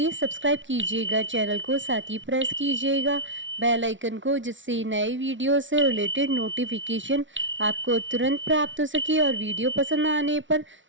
सब्सक्राइब कीजिएगा चैनल को, साथ ही प्रेस कीजिएगा बेल आइकन को, जिससे नए वीडियो से रिलेटेड नोटिफिकेशन आपको तुरंत प्राप्त हो सके। और वीडियो पसंद आने पर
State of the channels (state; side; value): late; left; 0.56 ms